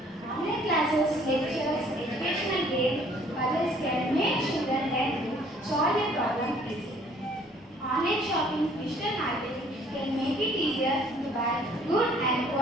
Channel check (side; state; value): both; normal; correlation 0.58